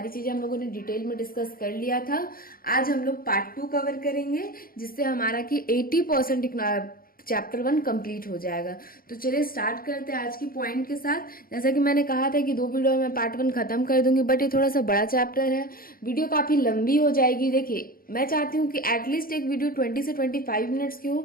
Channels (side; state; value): right; late; 0.42 ms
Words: चीजें हम लोगों ने डिटेल में डिस्कस कर लिया था। आज हम लोग पार्ट 2 कवर करेंगे जिससे हमारा कि 80% चैप्टर 1 कंप्लीट हो जाएगा। तो चलिए स्टार्ट करते हैं आज की पॉइंट के साथ। जैसा कि मैंने कहा था कि 2 वीडियो में पार्ट 1 खत्म कर दूंगी, बट ये थोड़ा सा बड़ा चैप्टर है, वीडियो काफी लंबी हो जाएगी। देखिए, मैं चाहती हूँ कि एटलीस्ट एक वीडियो 20 से 25 मिनट्स की हो,